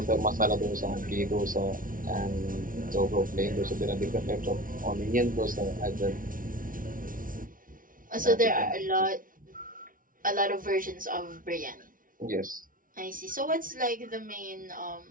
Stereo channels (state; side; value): late; left; 0.39 ms